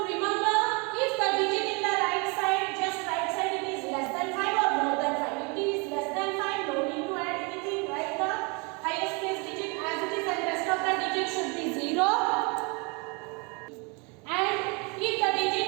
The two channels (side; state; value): left; quieter; 30.9 dB